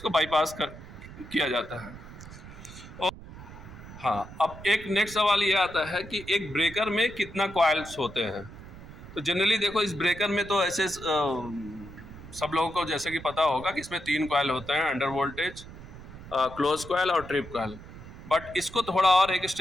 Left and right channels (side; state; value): right; noise; rumble, 15 dB below the sound